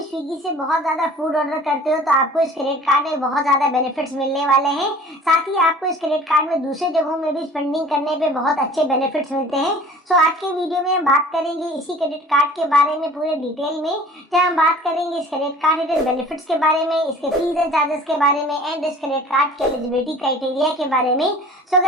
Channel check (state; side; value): normal; both; correlation 0.46